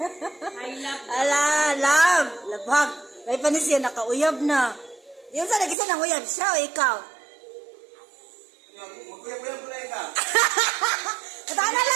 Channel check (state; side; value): drops out; left; at 5.8 s